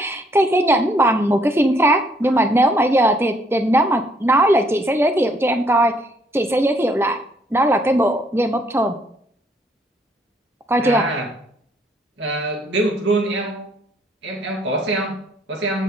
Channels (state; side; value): normal; both; correlation 0.67